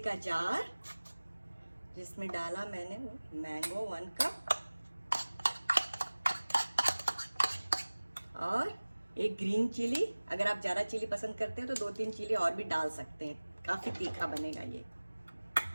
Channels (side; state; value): both; inverted; correlation -1.00